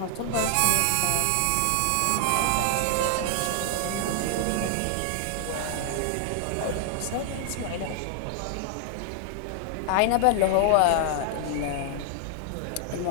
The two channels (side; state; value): both; different; correlation 0.00